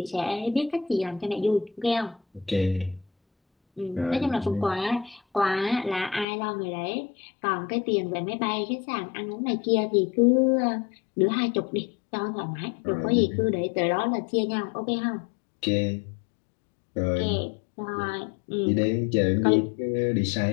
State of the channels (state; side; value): drops out; right; at 6.2 s